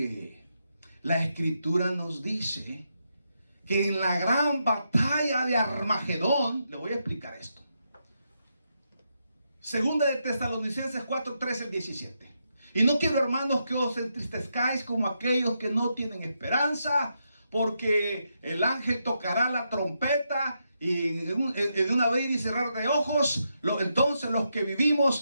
la Escritura nos dice que en la gran batalla de Armagedón, le voy a explicar esto. Segunda de Tesalonicenses 4, 13 al 17. Y no quiero, hermanos, que os entristezcáis como aquellos que no tienen esperanza, porque el ángel tocará la trompeta y en un abrir y cerrar de ojos, entonces los que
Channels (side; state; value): both; inverted; correlation -0.83